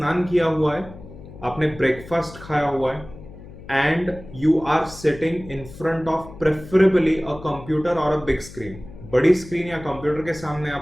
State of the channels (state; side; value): noise; left; hum, 17 dB below the sound